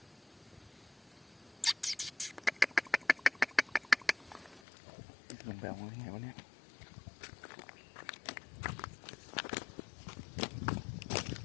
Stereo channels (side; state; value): right; drops out; at 4.6 s